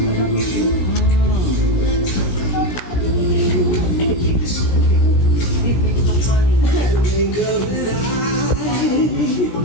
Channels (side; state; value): right; late; 17 ms